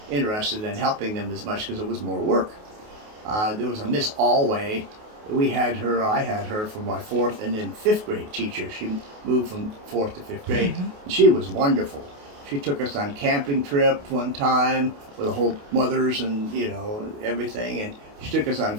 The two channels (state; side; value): late; left; 28 ms